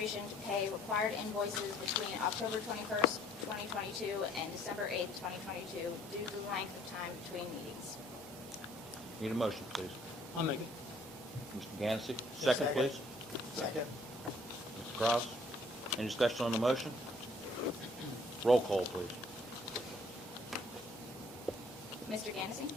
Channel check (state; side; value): normal; both; correlation 0.60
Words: to pay required invoices between October 21st, 2022 and December 8th, 2022 due to the length of time between meetings. Need a motion, please. I'll make it. Mr. Gansey. Second, please. Second. Mr. Kraus. Any discussion on the motion? Roll call, please. Mr. Gansey?